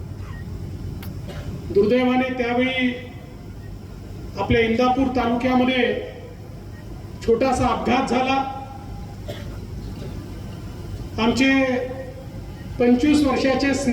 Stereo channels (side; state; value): both; identical; correlation 1.00